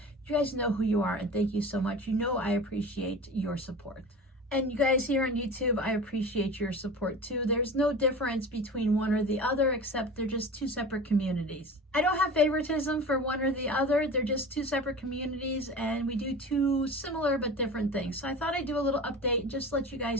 you guys know who you are, and thank you so much. You know I appreciate your support. And you guys here on YouTube, I appreciate your support too. There's no difference between one or the other, except they're just two separate communities. I don't have favoritism for one or the other. They're just two separate communities, and we do two similar but different things. So I thought I'd do a little update and just let you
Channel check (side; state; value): both; normal; correlation 0.35